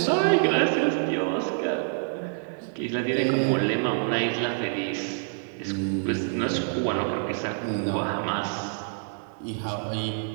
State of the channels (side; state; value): left; silent; digital silence